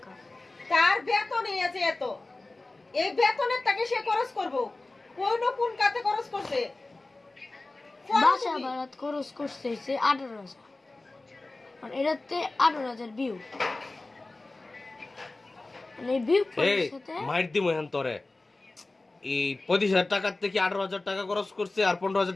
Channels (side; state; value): right; quieter; 3.1 dB